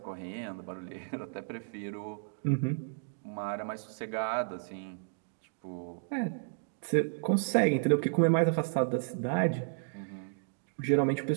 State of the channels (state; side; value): silent; left; digital silence